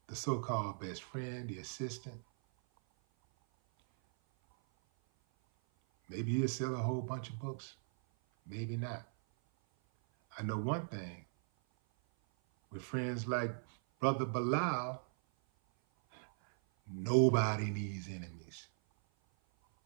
the so-called best friend, the assistant, maybe he'll sell a whole bunch of books, maybe not. I know one thing, with friends like Brother Bilal, Nobody needs enemies.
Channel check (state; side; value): silent; left; 52 dB below the other